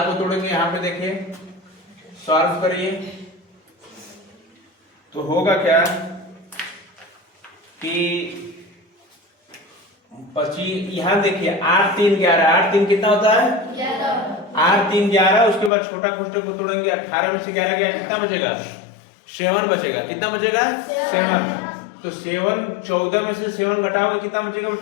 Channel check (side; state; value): right; drops out; at 15.7 s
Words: को तोड़ेंगे। यहाँ पे देखिए सॉल्व करिए तो होगा क्या कि 25, यहाँ देखिए 8 3 11, 8 3 कितना होता है 8 3 11। उसके बाद छोटा कोष्टक को तोड़ेंगे, 18 में से 11 गया कितना बचेगा 7 बचेगा। कितना बचेगा 7। तो 7 14 में से 7 घटाओगे कितना बचेगा